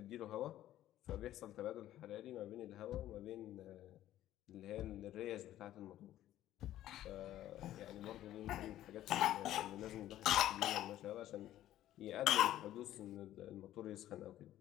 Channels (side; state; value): right; quieter; 13.2 dB